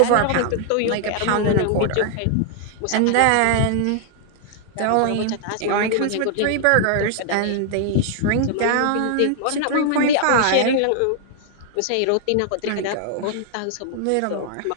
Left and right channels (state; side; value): different; both; correlation 0.00